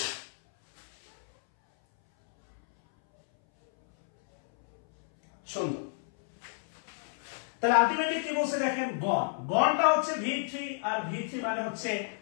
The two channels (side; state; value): right; silent; 58 dB below the other